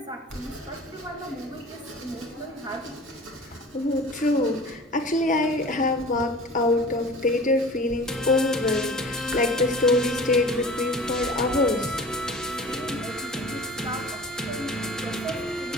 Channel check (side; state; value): both; normal; correlation 0.41